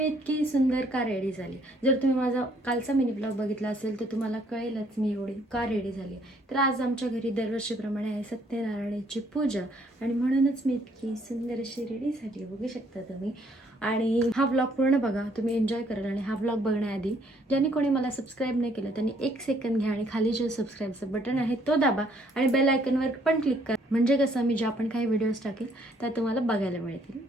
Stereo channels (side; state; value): both; normal; correlation 0.65